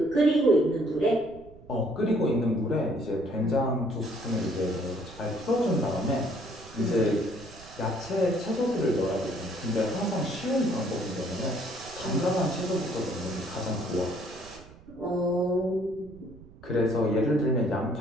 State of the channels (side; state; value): right; noise; rumble, 20 dB below the sound